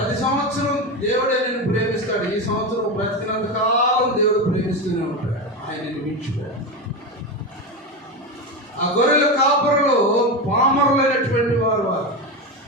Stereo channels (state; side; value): normal; both; correlation 0.17